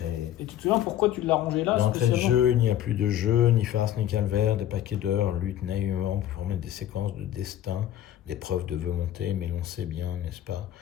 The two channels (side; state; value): right; quieter; 11.8 dB